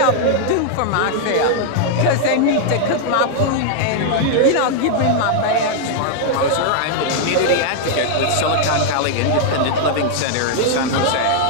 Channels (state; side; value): different; both; correlation -0.01